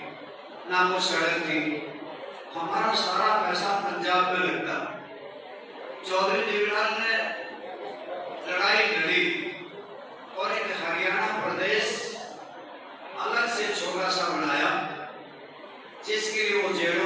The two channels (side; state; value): both; identical; correlation 1.00